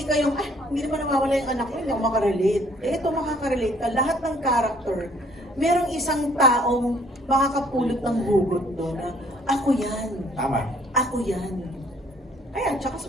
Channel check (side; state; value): both; normal; correlation 0.61